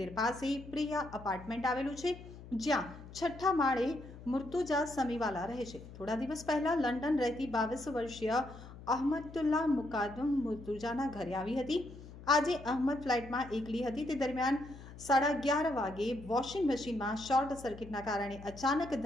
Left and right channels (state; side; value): noise; left; hum, 16 dB below the sound